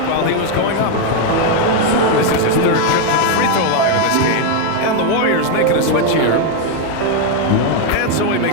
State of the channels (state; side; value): different; both; correlation 0.01